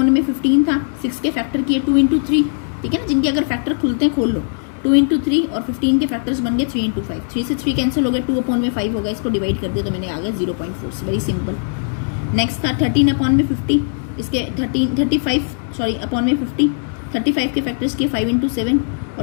में 15 था, 6 के फैक्टर किए 2 इंटू 3, ठीक है ना, जिनके अगर फैक्टर खुलते हैं खोल लो। 2 इंटू 3 और 15 के फैक्टर्स बन गए 3 इंटू 5, 3 से 3 कैंसिल हो गया, 2 अपॉन में 5 हो गया, इसको डिवाइड कर दिया तो मैंने आ गया 0.4, वेरी सिंपल। नेक्स्ट था 13 अपॉन में 50, इसके 35 अपॉन में 50, 35 के फैक्टर्स किए 5 इंटू 7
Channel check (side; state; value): right; silent; digital silence